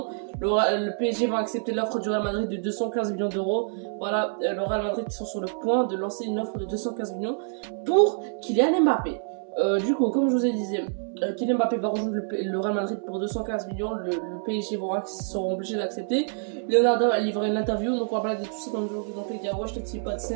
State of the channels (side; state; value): left; silent; 60 dB below the other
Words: Le PSG va accepter l'offre du Real Madrid de 215 millions d'euros. Voilà, le Real Madrid sont sur le point de lancer une offre de 215 millions pour Kylian Mbappé. Du coup, comme je vous ai dit, Kylian Mbappé va rejoindre le Real Madrid pour 215 millions. Le PSG seront obligés d'accepter. Leonardo a livré une interview. Donc on va parler de tout ça dans le jour. Donc les gars, wesh les petits potes, c'est